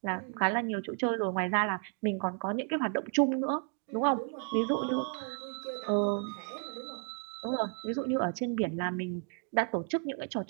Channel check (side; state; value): left; quieter; 39.2 dB